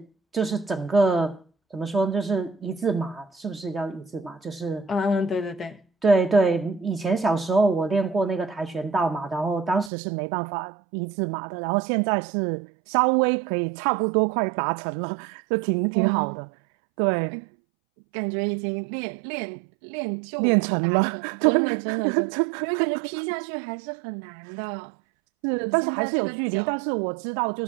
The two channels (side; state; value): left; drops out; at 9.9 s